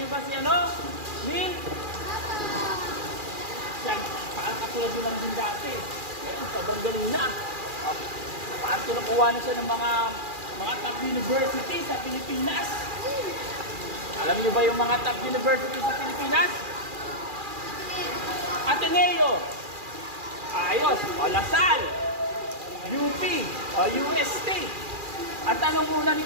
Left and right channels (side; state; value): left; late; 2.4 ms